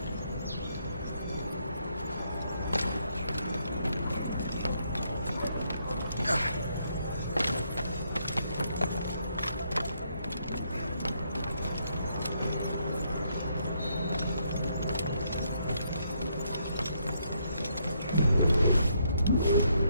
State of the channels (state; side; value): inverted; both; correlation -0.75